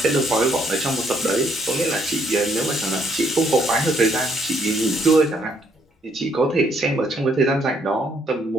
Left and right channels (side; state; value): both; normal; correlation 0.69